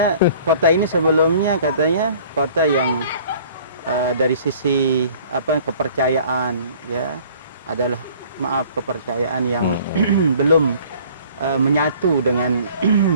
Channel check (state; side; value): inverted; both; correlation -0.52